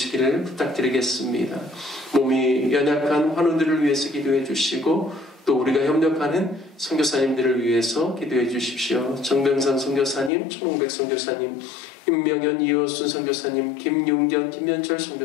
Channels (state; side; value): drops out; right; at 10.3 s